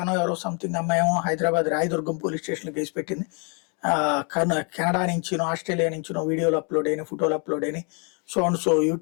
ఎవరో సంథింగ్ అమ్మాయి ఏమో హైదరాబాద్ రాయదుర్గం పోలీస్ స్టేషన్లో కేసు పెట్టింది. కెనడా నుంచినో ఆస్ట్రేలియా నుంచినో వీడియోలు అప్లోడ్ అయినాయి, ఫోటోలు అప్లోడ్ అయినాయి. సో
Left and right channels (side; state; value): right; quieter; 36.2 dB